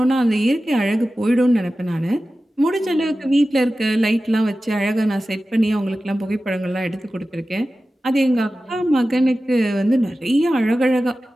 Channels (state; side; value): normal; both; correlation 0.95